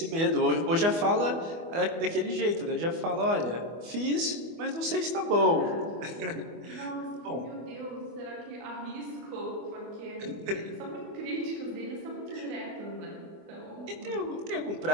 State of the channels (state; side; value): late; left; 24 ms